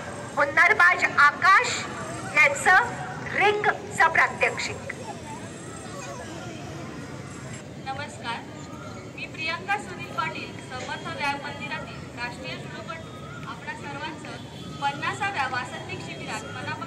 हुन्नरबाज आकाश यांचं रिंगचं प्रात्यक्षिक. नमस्कार, मी प्रियंका सुनील पाटील, समर्थ व्यायाम मंदिरातील राष्ट्रीय जुडोपटू आपणा सर्वांचं 50व्या वासंतिक शिबिरात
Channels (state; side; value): identical; both; correlation 1.00